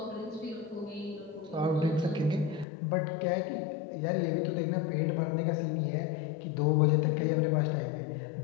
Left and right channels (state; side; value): drops out; right; at 2.7 s